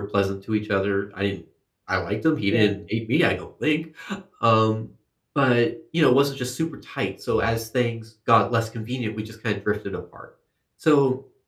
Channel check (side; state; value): both; identical; correlation 1.00